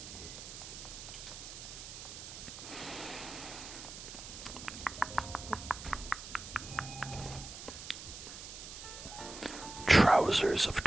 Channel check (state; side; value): noise; right; hiss, 11 dB below the sound